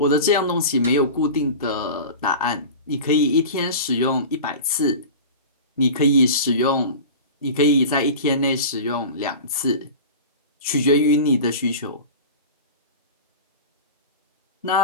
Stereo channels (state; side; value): inverted; both; correlation -0.33